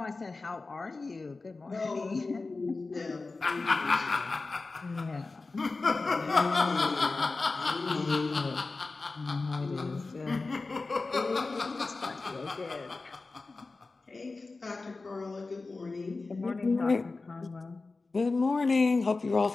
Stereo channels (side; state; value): right; quieter; 3.7 dB